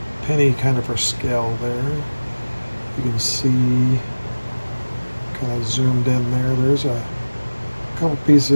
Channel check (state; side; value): inverted; both; correlation -1.00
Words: penny kind of for scale there. You can see, kind of zoomed in there. There's a couple